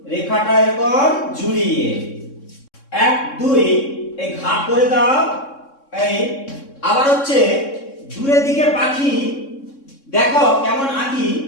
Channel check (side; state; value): right; late; 3.6 ms